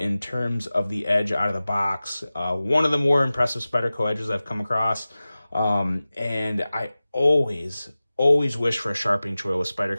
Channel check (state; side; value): inverted; both; correlation -0.96